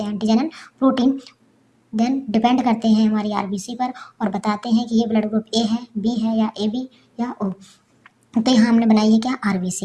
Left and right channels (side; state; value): both; identical; correlation 1.00